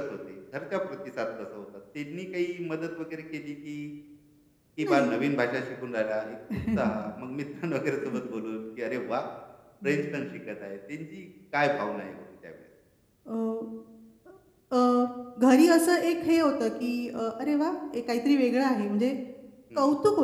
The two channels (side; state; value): both; identical; correlation 1.00